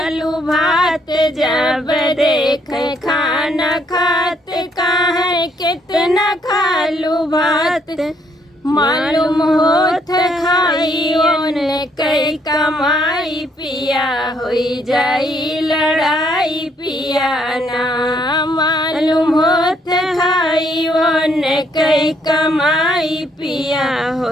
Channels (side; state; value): both; normal; correlation 0.70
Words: भात, जब देख खाना खात काहे कितना खालू भात। मालूम होत खाई ओने कई कमाई पिया, होई जाई लड़ाई पिया ना। मालूम होत खाई ओने कई कमाई पिया,